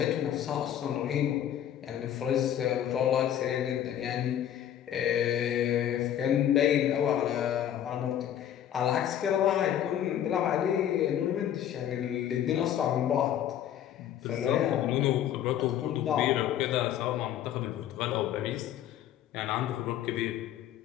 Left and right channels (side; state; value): right; quieter; 10.6 dB